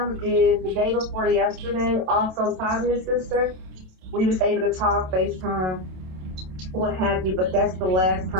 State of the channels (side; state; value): left; late; 27 ms